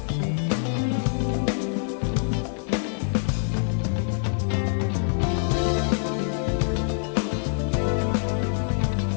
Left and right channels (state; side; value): silent; right; digital silence